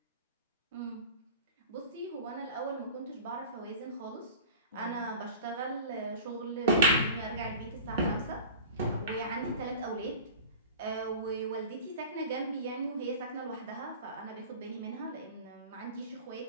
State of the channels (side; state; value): both; inverted; correlation -0.37